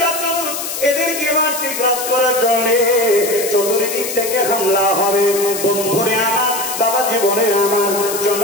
এদেরকে মারতে গ্রাস করার জন্য চতুর্দিক থেকে হামলা হবে। বন্ধুরে আমার, বাবা জীবনে আমার,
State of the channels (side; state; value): left; noise; hiss, 5 dB below the sound